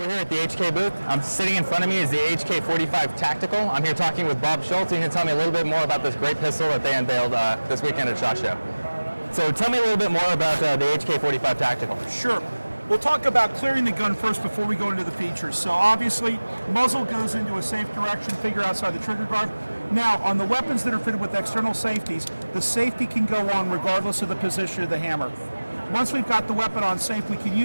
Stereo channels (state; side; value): inverted; both; correlation -1.00